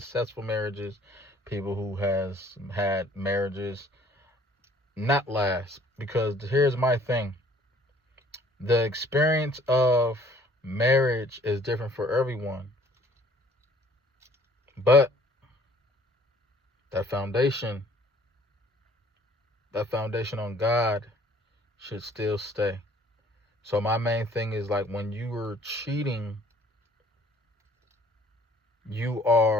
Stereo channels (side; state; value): both; normal; correlation 0.56